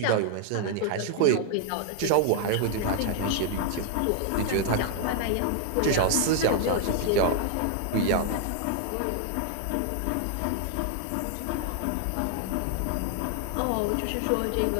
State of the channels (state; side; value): different; both; correlation 0.00